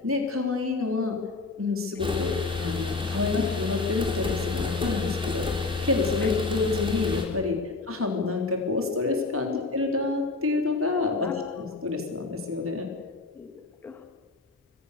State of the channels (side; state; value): right; quieter; 3.6 dB